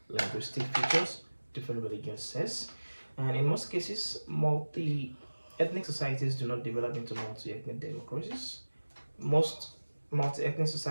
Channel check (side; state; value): both; inverted; correlation -1.00